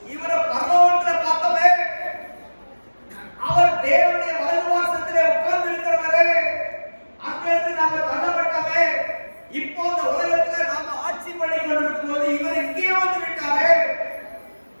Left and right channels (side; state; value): both; inverted; correlation -1.00